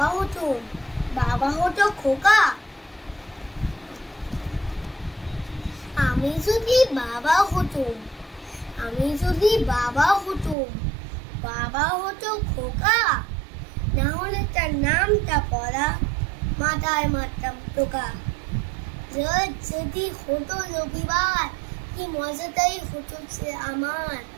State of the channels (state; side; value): drops out; left; at 10.6 s